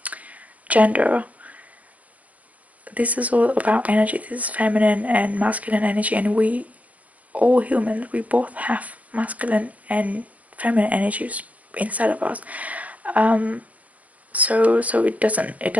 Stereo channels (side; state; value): left; late; 0.071 ms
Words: gender. This is all about energy. This is feminine and masculine energy, and we all humans, we both have masculine and feminine energies inside of us. So it